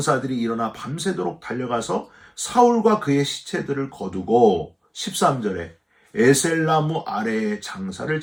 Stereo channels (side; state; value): both; identical; correlation 1.00